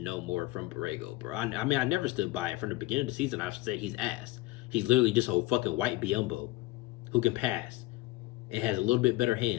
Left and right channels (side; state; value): right; quieter; 19.5 dB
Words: no more from Borrego, bro. I mean, I never stood by it. From the beginning of the season, I've said he's ass. He's literally just a fucking white Biyombo who can pass and has a little bit better